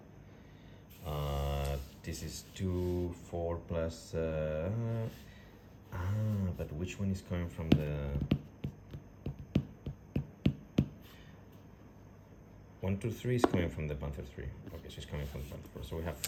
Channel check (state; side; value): identical; both; correlation 1.00